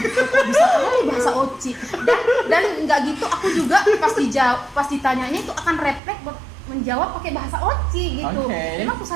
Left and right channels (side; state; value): left; drops out; at 6.0 s